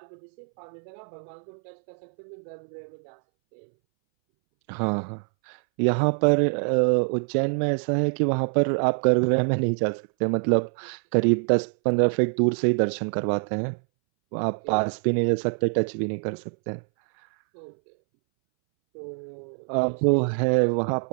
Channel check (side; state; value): left; silent; 62 dB below the other